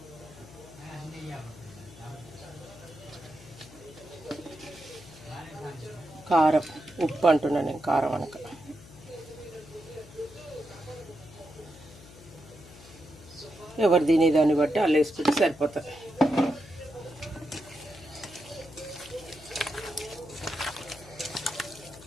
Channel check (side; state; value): left; noise; hum, 19 dB below the sound